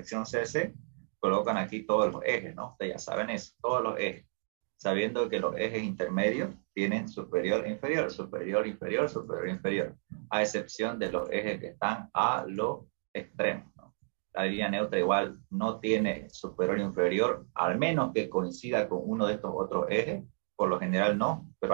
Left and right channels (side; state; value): left; silent; digital silence